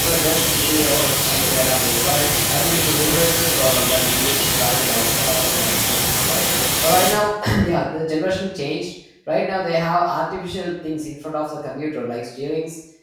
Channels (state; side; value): identical; both; correlation 1.00